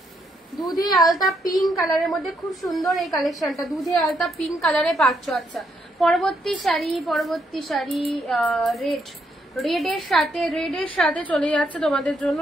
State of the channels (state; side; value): normal; both; correlation 0.75